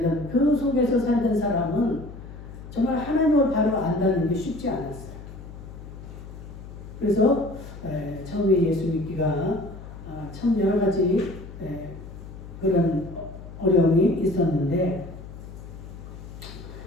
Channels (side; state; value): left; noise; hum, 14 dB below the sound